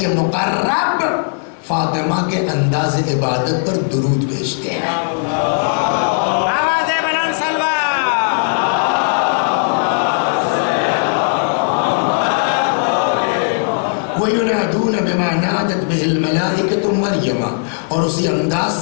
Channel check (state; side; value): silent; right; 61 dB below the other